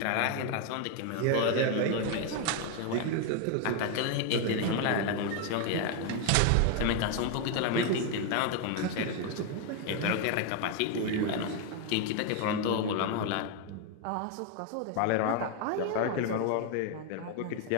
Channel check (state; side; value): different; both; correlation 0.01